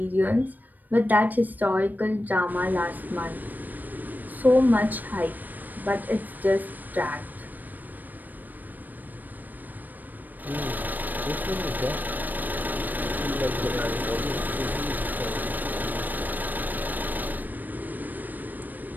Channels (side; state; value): left; late; 0.087 ms